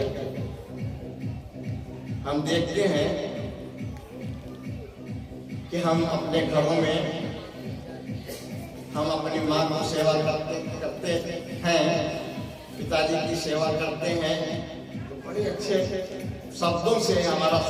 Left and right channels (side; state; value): both; identical; correlation 1.00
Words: हम देखते हैं कि हम अपने घरों में हम अपनी माँ की सेवा करते हैं, पिताजी की सेवा करते हैं, तो बड़े अच्छे शब्दों से हमारा